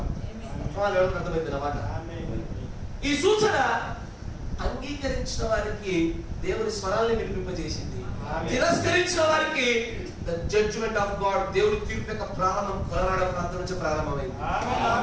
అర్థమైంది అన్నమాట. ఈ సూచన అంగీకరించిన వారికి దేవుని స్వరాన్ని వినిపింపజేసింది, తిరస్కరించిన వారికి ద జడ్జ్మెంట్ ఆఫ్ గాడ్, దేవుని తీర్పు యొక్క ప్రారంభం కలరాడ ప్రాంతం నుంచి ప్రారంభమైంది.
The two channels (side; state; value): both; identical; correlation 1.00